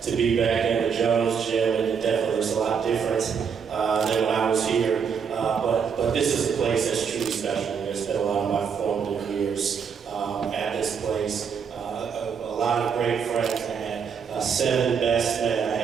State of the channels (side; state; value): left; quieter; 6.7 dB